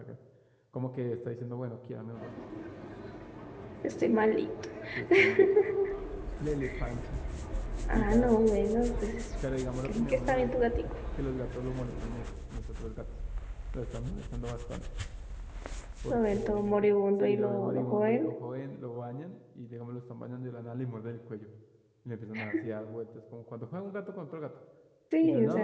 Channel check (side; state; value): both; identical; correlation 1.00